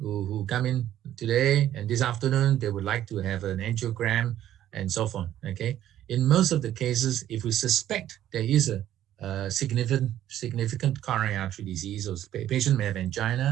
come in today and this afternoon. They would like to have an angiogram and so on. Okay, in most of the cases, if we suspect there is a significant coronary artery disease, or patient may have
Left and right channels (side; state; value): left; quieter; 12.1 dB